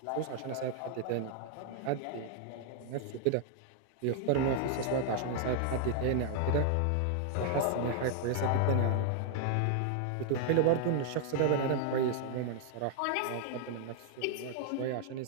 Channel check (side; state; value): both; different; correlation 0.00